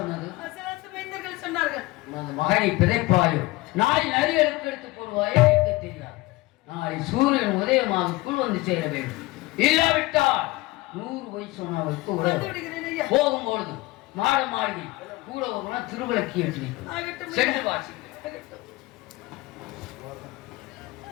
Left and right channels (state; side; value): quieter; right; 20.7 dB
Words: அசலாத்து மைந்தர்கள் சொன்னார்கள். உனது மகனை பிதைப்பாயோ நாளை நரிகளுக்கு எடுத்து போடுவாயோ எனக்கு தெரியாது. நாளை சூரியன் உதயமாகக்குள் வந்து சேர வேண்டும். இல்லாவிட்டால் 100 வயசு சொன்னவருக்கு வந்து விடுகிறேன் ஐயா. போகும்பொழுது மாட மாளிகை கூட ஒரு திருவிளக்கி ஏற்றி வைக்கும். ஆகட்டும் ஐயா. சென்று வாசி. ஆகட்டும்.